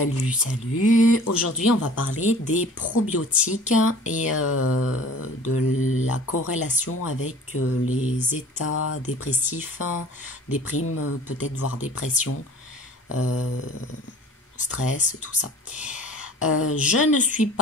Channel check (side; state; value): both; normal; correlation 0.46